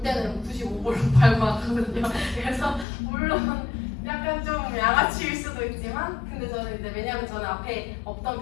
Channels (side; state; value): right; drops out; at 2.9 s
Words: 때는 95불로 팔고 왔거든요. 그래서 물론 약간 좀 양아치일 수도 있지만 근데 저는 이제 왜냐면 저는 앞에